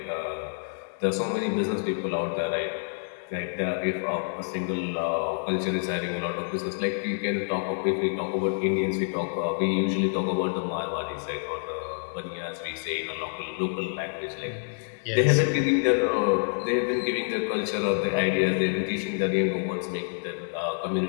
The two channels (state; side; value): silent; right; digital silence